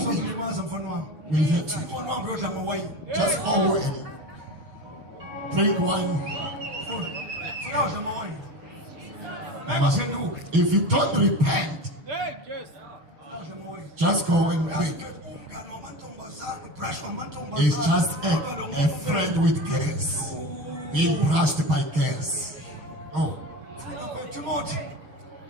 Uzokulimaza mfana wami. will hurt you. Mfana wami uyodla ngowayini. Just go and drink wine. Funa udla ngowayini. Ngaphenduka. If you don't repent, Udla ngowayini. just go and drink. Umngane wamantombazane, brush wamantombazane. It's just a friend with girls. Being brushed by girls. Oh, Timothy.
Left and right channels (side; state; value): left; late; 6.6 ms